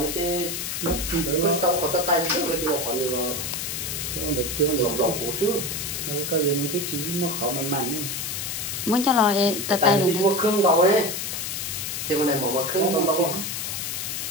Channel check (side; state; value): left; noise; hiss, 3 dB below the sound